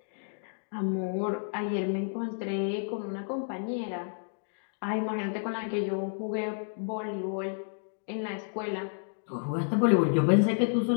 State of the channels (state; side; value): silent; right; digital silence